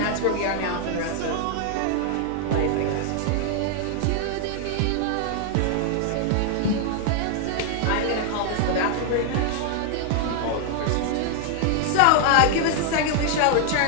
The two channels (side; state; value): both; different; correlation 0.00